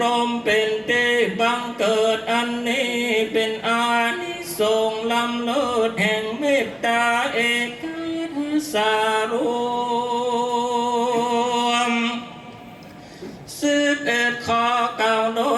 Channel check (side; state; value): both; identical; correlation 1.00